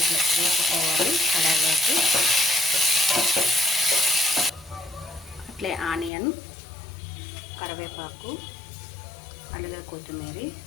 వేసుకోవాలి కడాయిలోకి. అట్లే ఆనియన్, కరివేపాకు, అలాగే కొత్తిమీర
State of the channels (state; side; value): drops out; right; at 6.1 s